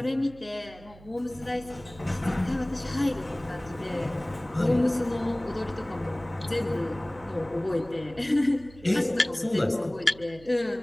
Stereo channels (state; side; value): noise; right; hum, 21 dB below the sound